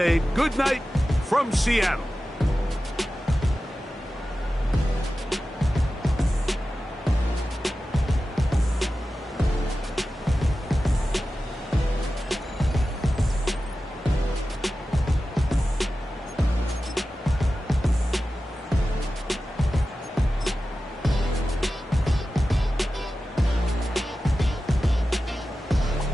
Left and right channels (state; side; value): normal; both; correlation 0.94